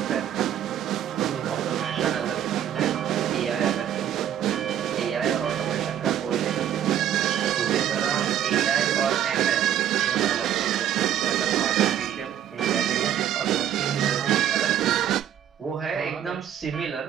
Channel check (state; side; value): quieter; left; 10.3 dB